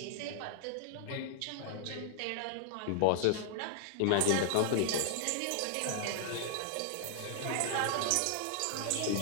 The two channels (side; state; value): both; different; correlation -0.01